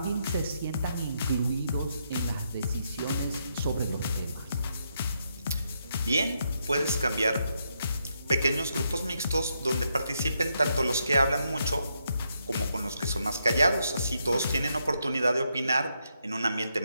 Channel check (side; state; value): both; inverted; correlation -0.80